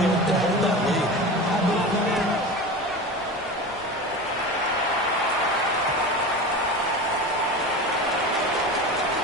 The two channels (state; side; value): normal; both; correlation 0.29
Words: and hold that lead.